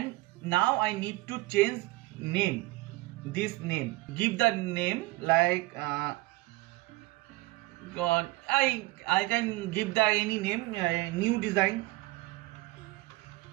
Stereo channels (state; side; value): quieter; left; 20.7 dB